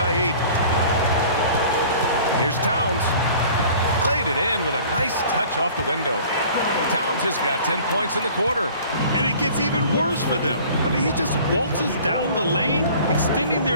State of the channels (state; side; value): inverted; both; correlation -0.48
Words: 8. Here's Towns. Played it in with a nice touch off the window. Towns has got 10 points in the quarter. And it gets even worse for them. I mean, he just waltzes down the lane, extending